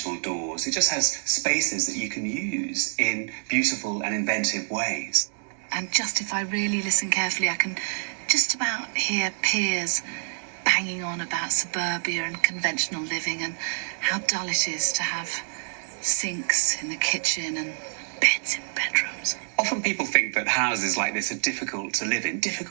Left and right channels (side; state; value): left; silent; digital silence